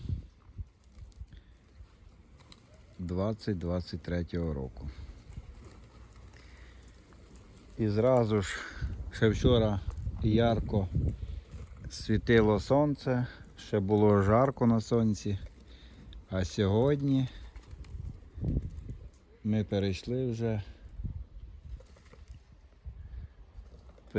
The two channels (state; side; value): identical; both; correlation 1.00